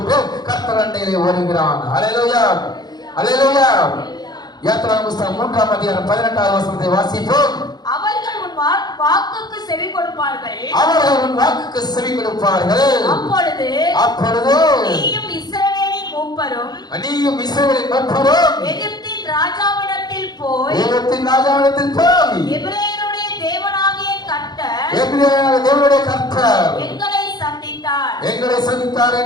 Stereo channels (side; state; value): right; late; 0.20 ms